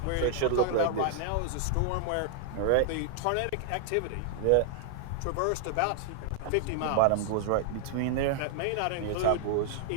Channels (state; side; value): different; both; correlation 0.00